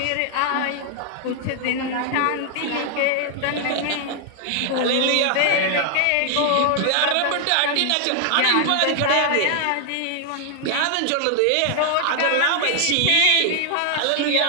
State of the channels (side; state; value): both; different; correlation 0.00